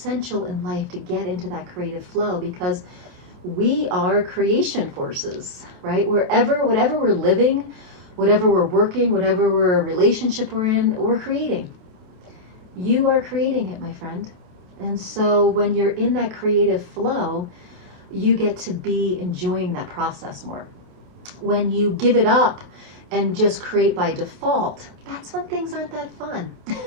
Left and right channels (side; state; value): left; late; 28 ms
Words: in life to get into that creative flow, because we are creation forces, right? Whatever we're living, whatever we're working, whatever relationship we're in, we're creating. You are creating it, my friend. And so when you're in that creative flow, you get to be enjoying that process more. When you give it up and just create by default, that's when things aren't that fun.